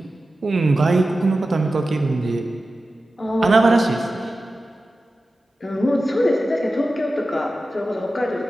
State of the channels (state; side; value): normal; both; correlation 0.94